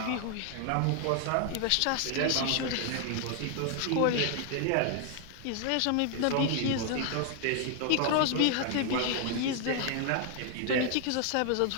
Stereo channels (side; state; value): both; different; correlation 0.00